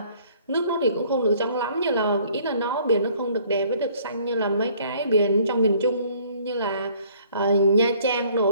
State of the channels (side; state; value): both; inverted; correlation -0.59